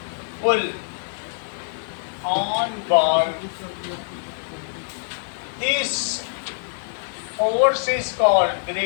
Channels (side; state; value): right; silent; digital silence